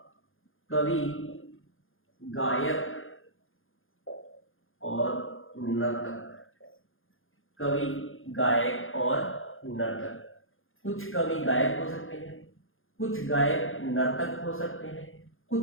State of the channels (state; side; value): late; right; 0.59 ms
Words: कवि, गायक और नर्तक। कवि, गायक और नर्तक। कुछ कवि गायक हो सकते हैं, कुछ गायक नर्तक हो सकते हैं,